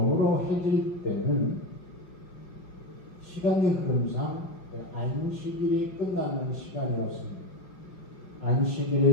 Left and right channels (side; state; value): right; late; 5.5 ms